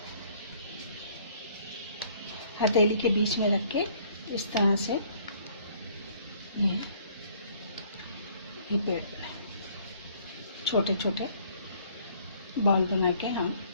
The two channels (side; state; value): both; inverted; correlation -0.60